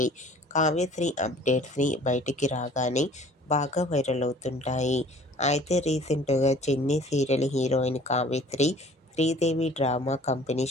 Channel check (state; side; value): normal; both; correlation 0.51